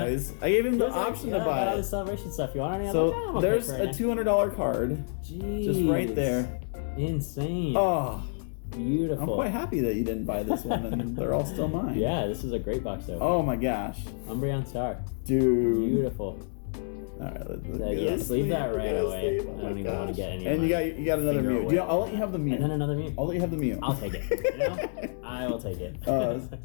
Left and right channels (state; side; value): silent; right; 59 dB below the other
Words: I gave him the option to buy all the it. celebration stuff. You want any So other? there's a $200 card. Jeez. Just right there. Insane. Oh, Beautiful. I'm quite happy that you didn't buy this one and they're all still mine. Yeah, this is a great box opening. Oh my gosh. Umbreon Star. Dude. Beautiful. Alright, let's Yes, leave that right away. I don't even want to get any. And you got another finger Mew. away. I'll let you have the Mew. And then another Mew. I'll let you have the Mew. I'll take it. You know? I will take it.